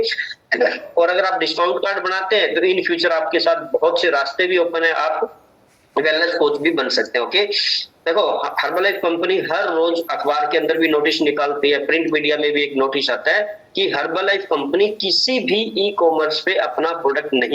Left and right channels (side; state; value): both; identical; correlation 1.00